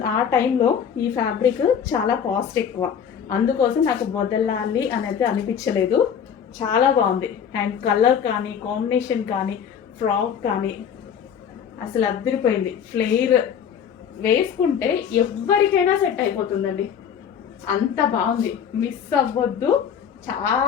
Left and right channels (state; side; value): quieter; right; 7.9 dB